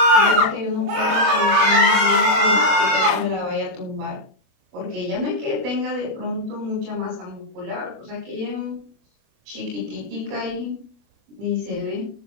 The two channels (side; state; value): left; late; 37 ms